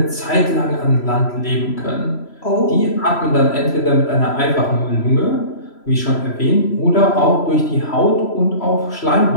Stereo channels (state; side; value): late; right; 3.0 ms